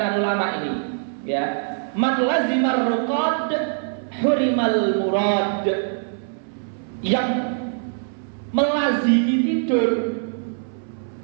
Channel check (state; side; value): silent; left; 61 dB below the other